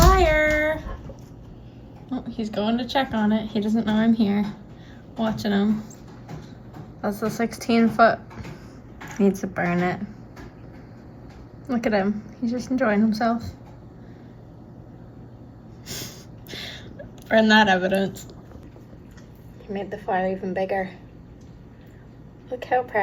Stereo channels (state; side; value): identical; both; correlation 1.00